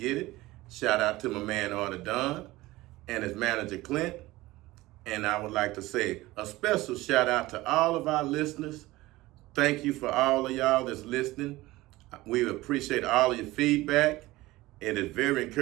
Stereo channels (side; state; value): left; quieter; 18.8 dB